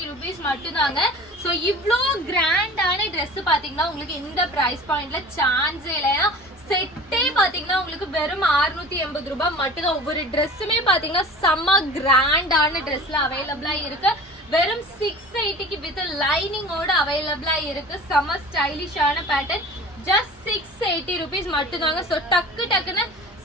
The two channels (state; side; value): normal; both; correlation 0.40